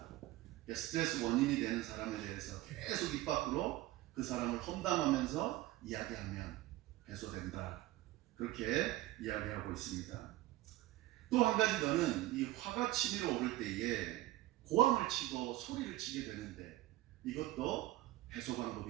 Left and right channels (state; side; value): quieter; left; 16.7 dB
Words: 스트레스 원인이 되는 사람에 대해서 계속 입 밖으로 그 사람을 험담하면서 이야기하면 해소된다. 그렇게 이야기하고 있습니다. 또 한 가지 더는 이 화가 치밀어 오를 때에 고함을 치고 소리를 치게 되는데 이것도 해소